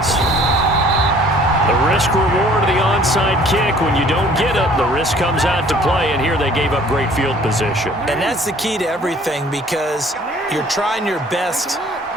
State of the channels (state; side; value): normal; both; correlation 0.54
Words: The risk-reward of the onside kick, when you don't get it, the risk comes out to play, and here they gave up great field position. And that's the key to everything, because you're trying your best